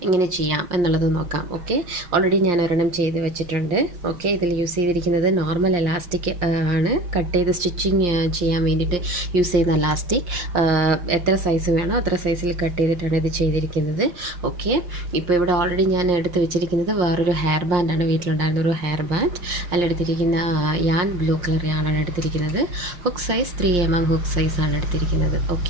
എങ്ങനെ ചെയ്യാം എന്നുള്ളത് നോക്കാം. ഓക്കെ, ഓൾറെഡി ഞാൻ ഒരെണ്ണം ചെയ്ത് വെച്ചിട്ടുണ്ട്. ഓക്കെ, ഇതിൽ യൂസ് ചെയ്തിരിക്കുന്നത് നോർമൽ എലാസ്റ്റിക് ആണ്. കട്ട് ചെയ്ത് സ്റ്റിച്ചിങ് ചെയ്യാൻ വേണ്ടിയിട്ട് യൂസ് ചെയ്യുന്ന എലാസ്റ്റിക്. എത്ര സൈസ് വേണോ അത്ര സൈസിൽ കട്ട് ചെയ്തിട്ടാണ് ഇത് ചെയ്തിരിക്കുന്നത്. ഓക്കെ, ഇപ്പോൾ ഇവിടെ ഓൾറെഡി ഞാൻ എടുത്ത് വെച്ചിരിക്കുന്നത് വേറൊരു ഹെയർ ബാൻഡാണ്. വീട്ടിലുണ്ടായിരുന്ന ഒരു ഹെയർ ബാൻഡ്. അതിലെടുത്തിരിക്കുന്ന യാൻ ബ്ലൂ കളർ യാണാണ് എടുത്തിരിക്കുന്നത്. ഹുക്ക് സൈസ് 3mm ഹുക്ക് സൈസാണ് എടുത്തിരിക്കുന്നത്.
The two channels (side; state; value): left; late; 5.7 ms